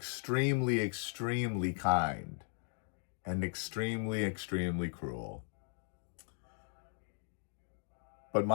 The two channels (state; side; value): silent; right; 53 dB below the other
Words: extremely kind and extremely, extremely cruel. But